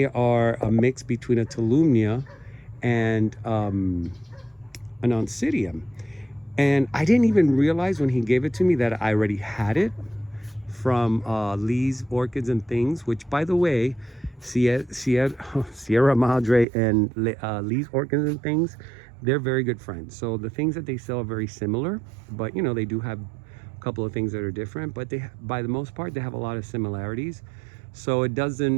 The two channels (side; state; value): left; drops out; at 16.7 s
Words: are a mix between a Tolumnia and an Oncidium. And I didn't even realize when he gave it to me that I already had it from Lee's Orchids and Things, which, by the way, Sierra Madre and Lee's Orchids and Things, they're very good friends. So the things that they sell are very similar, but you know, they do have a couple of things that are different, but they, by the most part, they have a lot of similarities. So it